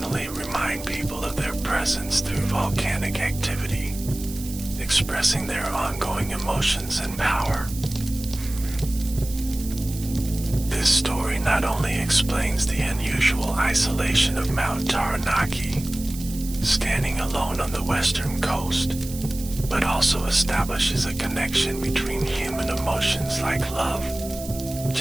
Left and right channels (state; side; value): noise; right; hiss, 13 dB below the sound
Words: remind people of their presence through volcanic activity, expressing their ongoing emotions and power. This story not only explains the unusual isolation of Mount Taranaki, standing alone on the western coast, but also establishes a connection between human emotions like love,